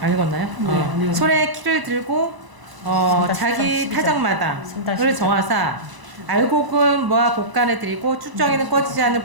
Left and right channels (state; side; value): late; left; 1.0 ms